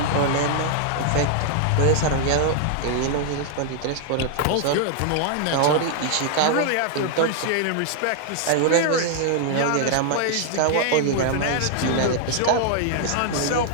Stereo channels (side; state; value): both; different; correlation 0.00